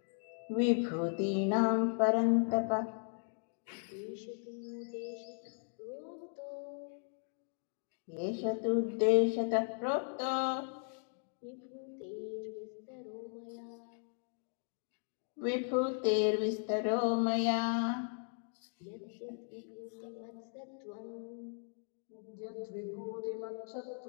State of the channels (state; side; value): silent; right; 53 dB below the other